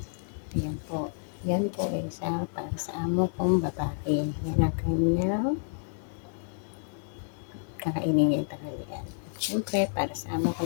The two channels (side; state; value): right; silent; 58 dB below the other